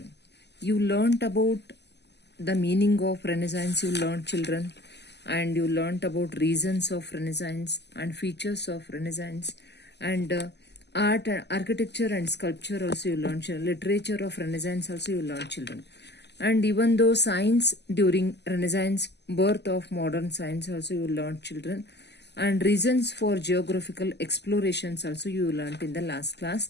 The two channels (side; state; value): right; late; 0.50 ms